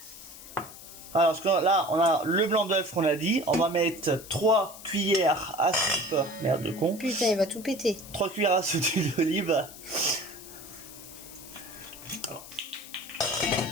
Alors là, on a le blanc d'œuf qu'on a dit. On va mettre 3 cuillères à soupe. Merde de con. Putain, il va tout péter. 3 cuillères à soupe d'huile d'olive.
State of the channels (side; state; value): left; noise; hiss, 16 dB below the sound